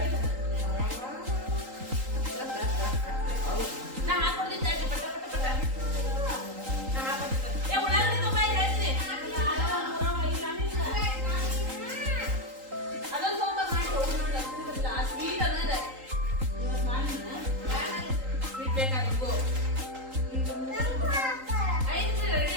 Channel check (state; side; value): late; left; 3.8 ms